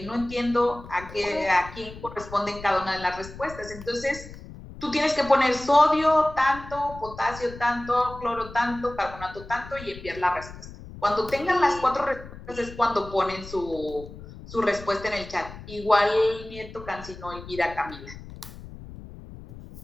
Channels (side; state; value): left; noise; rumble, 15 dB below the sound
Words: no entiendo a quién corresponden cada una de las respuestas. Entonces, tú tienes que poner sodio tanto, potasio tanto, cloro tanto, carbonato tanto y enviar la respuesta. Cuando tengan las 4 respuestas es cuando ponen su respuesta en el chat. Igual Nieto Cancino, Elvira, Camila.